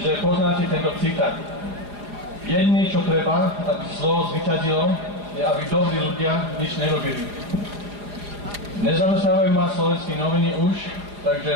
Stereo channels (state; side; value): late; left; 4.9 ms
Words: poznáte tento citát. Jediné, čo treba, aby zlo zvyťazilo, je, aby dobrí ľudia nič nerobili. Nezamestnávajú ma slovenské noviny už,